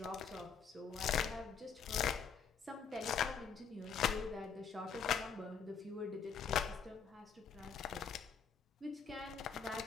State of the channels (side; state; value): right; quieter; 6.6 dB